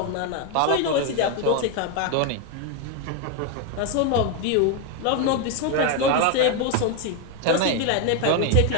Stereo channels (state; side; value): different; both; correlation 0.01